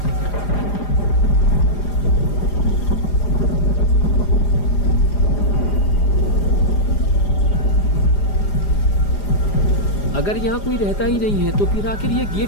अगर यहाँ कोई रहता ही नहीं है तो फिर आखिर ये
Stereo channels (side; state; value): right; late; 4.9 ms